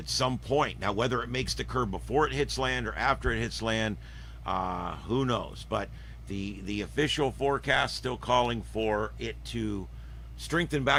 some point. Now, whether it makes the curve before it hits land or after it hits land, who knows? But the official forecast still calling for it to strengthen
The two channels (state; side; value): identical; both; correlation 1.00